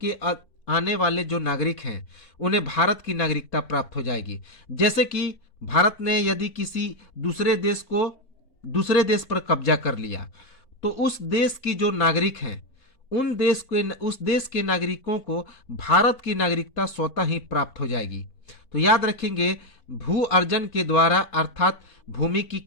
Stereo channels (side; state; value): right; late; 4.5 ms